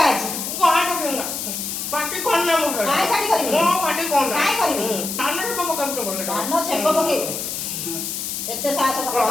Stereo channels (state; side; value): noise; left; hiss, 4 dB below the sound